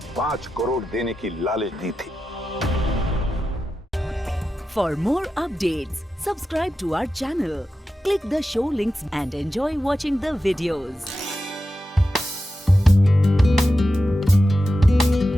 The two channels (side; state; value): both; normal; correlation 0.91